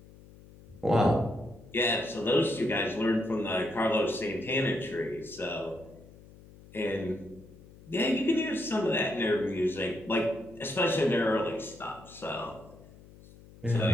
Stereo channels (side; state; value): left; noise; hum, 21 dB below the sound